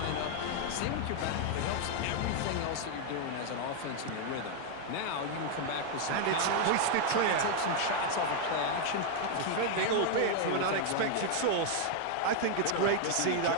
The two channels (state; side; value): different; both; correlation 0.00